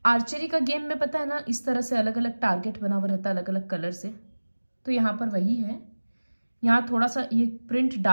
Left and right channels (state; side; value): inverted; both; correlation -1.00